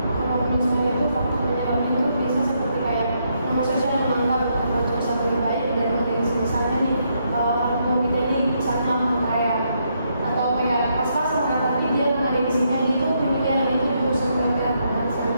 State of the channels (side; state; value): both; inverted; correlation -0.77